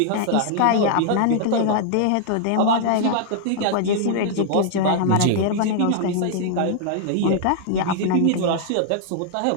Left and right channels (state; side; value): different; both; correlation -0.01